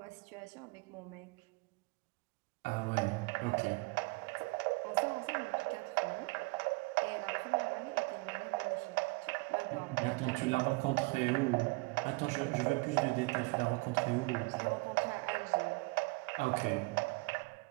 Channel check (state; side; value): quieter; left; 27.4 dB